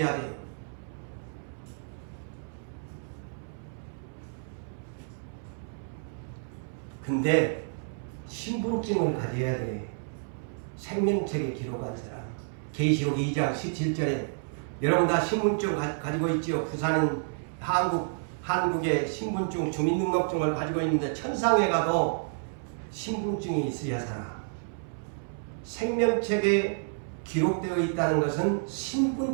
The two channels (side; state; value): left; silent; 58 dB below the other